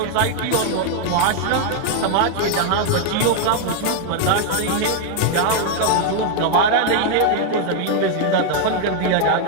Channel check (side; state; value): both; different; correlation 0.00